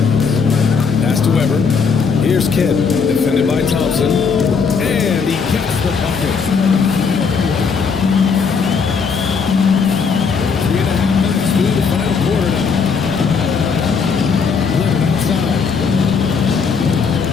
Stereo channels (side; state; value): right; quieter; 5.6 dB